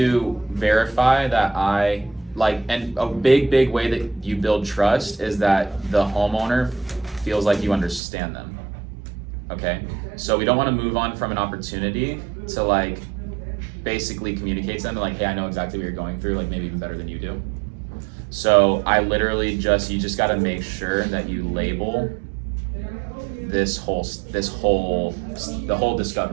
verify that and a big way that you build trust is that the homeowner feels like you understand them. Okay? So we don't want to move on from an opportunity to like basically communicate to them like, hey, I know exactly what you're going through, like maybe even better than you do. So I literally you just got to make sure that you label the whole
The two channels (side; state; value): left; drops out; at 8.0 s